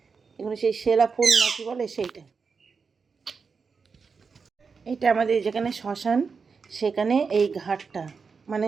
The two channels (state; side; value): quieter; left; 5.2 dB